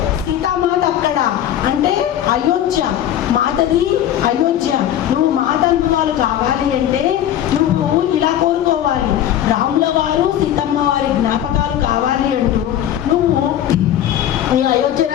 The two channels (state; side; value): quieter; right; 11.2 dB